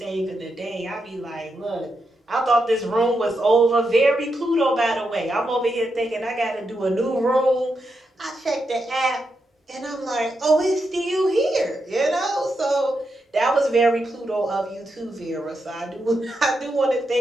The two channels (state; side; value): normal; both; correlation 0.84